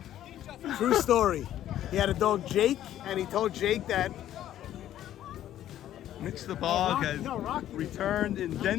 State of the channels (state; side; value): quieter; right; 12.1 dB